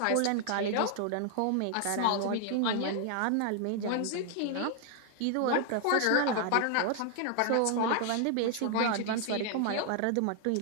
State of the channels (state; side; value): different; both; correlation 0.00